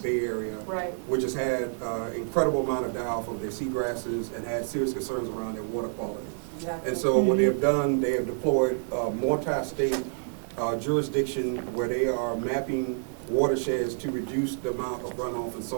Bay area, which has had incredible amount of die-off of their seagrasses and had serious concerns around their water quality. Exactly. And so what they've done, they have deployed multi-state jurisdiction where they are mapping watersheds to reduce the amount of runoff and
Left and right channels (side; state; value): left; silent; 59 dB below the other